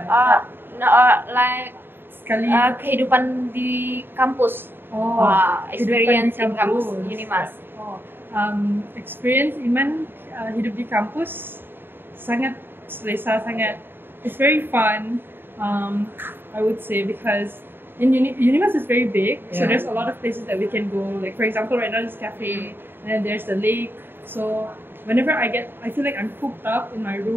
No, like Sekali. kehidupan di kampus. Oh, Experience in kehidupan di kampus kampus. Unimas. Oh, experience Iman hidup di kampus sangat selesa, sangat. It's very fun. I would say because in Unimas is very big, so Yeah. there's a lot of places that we can go. Like for example, right now there's cafe, and then there's the lake. So whenever I feel like I'm cooped up in my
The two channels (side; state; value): left; late; 0.10 ms